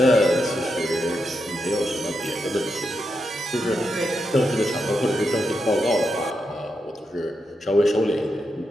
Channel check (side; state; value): both; normal; correlation 0.85